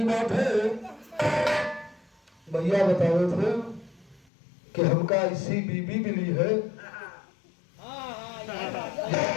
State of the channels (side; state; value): right; drops out; at 4.2 s